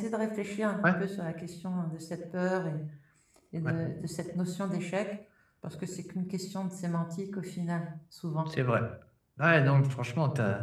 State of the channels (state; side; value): identical; both; correlation 1.00